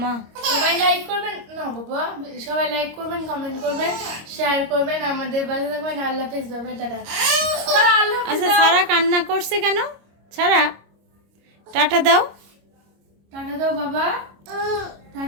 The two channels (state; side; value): late; left; 26 ms